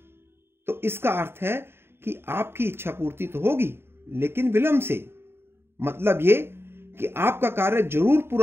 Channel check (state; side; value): late; left; 0.11 ms